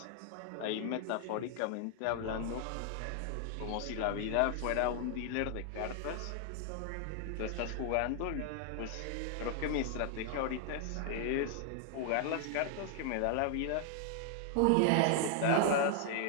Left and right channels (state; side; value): different; both; correlation 0.00